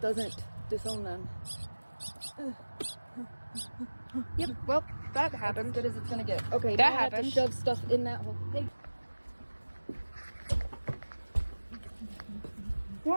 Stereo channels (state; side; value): inverted; both; correlation -1.00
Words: doesn't disown them. Yep, well, that happened. As good as it's gonna get. Okay, That now I have to happened. shove stuff in that hole. Hey.